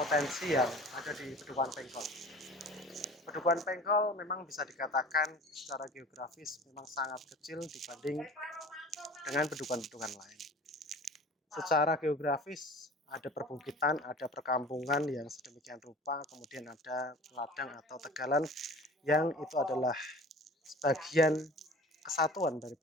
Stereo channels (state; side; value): normal; both; correlation 0.42